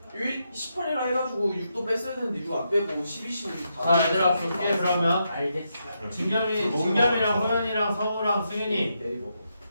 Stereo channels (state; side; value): inverted; both; correlation -0.82